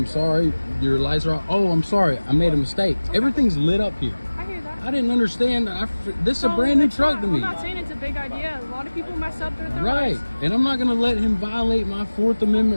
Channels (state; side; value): inverted; both; correlation -1.00